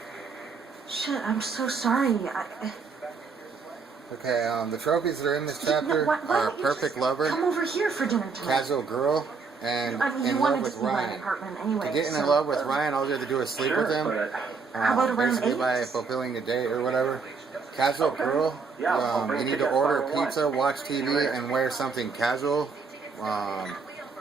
Shit, I'm so sorry. Okay, the trophies that are in this chapter are Perfect Lover, come over here for dinner tonight. Casual Girl, and In Love with Ryan. Anyway, to get in love with Ryan, all you have to do is sleep with him. How about around basically 8? by fulfilling the date or whatever. Casual Girl, you need to order pizza, watch TV, and wear something casual.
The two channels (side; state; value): left; quieter; 4.9 dB